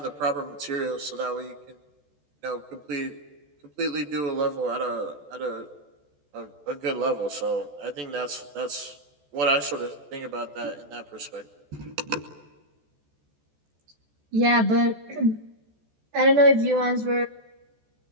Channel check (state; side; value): late; left; 14 ms